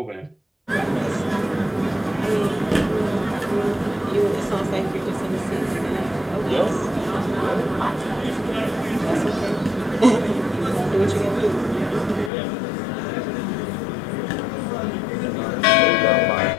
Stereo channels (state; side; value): drops out; right; at 12.3 s